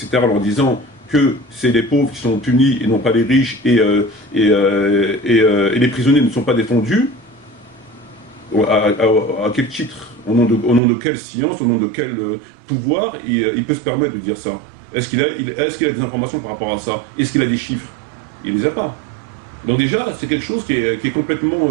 en leur disant que c'est les pauvres qui sont punis et non pas les riches, et les prisonniers ne sont pas défendus, à quel titre, au nom de quelle science, au nom de quel pouvoir il peut se permettre de dire ça? Est-ce qu'il a des informations par rapport à ça? Est-ce qu'il a des chiffres? Il ne les a pas. Donc déjà, c'est quelque chose qui est complètement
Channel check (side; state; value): left; drops out; at 10.8 s